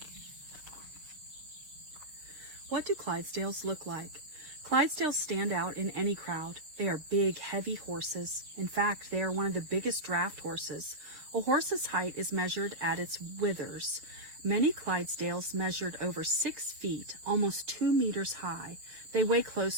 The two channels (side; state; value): left; late; 6.7 ms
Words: What do Clydesdales look like? Clydesdales stand out in any crowd. They are big, heavy horses. In fact, they are one of the biggest draft horses. A horse's height is measured at its withers. Many Clydesdales measured over 6 feet, almost 2 meters high. They weigh